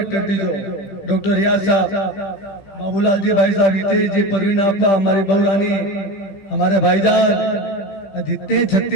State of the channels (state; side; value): late; right; 15 ms